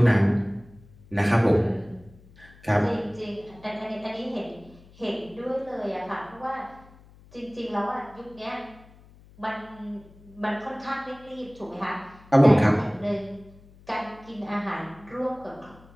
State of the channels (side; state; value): left; noise; hum, 24 dB below the sound